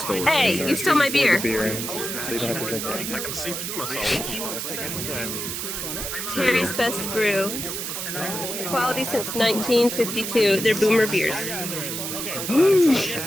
stole it. Hey, you stole my beer. I can see through myself. Terry's Best Brew. Quality since 1952. They're boomer beers.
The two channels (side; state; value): right; noise; hiss, 4 dB below the sound